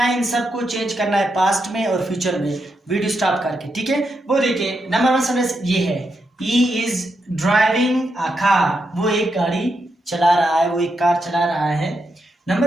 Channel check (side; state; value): both; normal; correlation 0.83